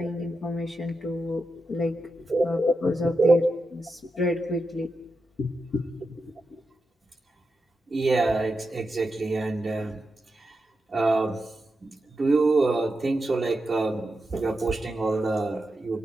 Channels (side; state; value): both; normal; correlation 0.88